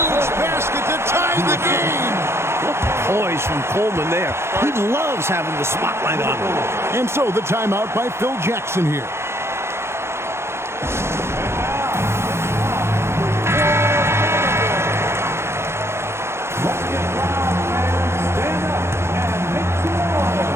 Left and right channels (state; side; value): late; left; 0.12 ms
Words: basket to tie the game. What poise from Coleman there. He loves having the spotlight on him. And so the timeout by Phil Jackson here.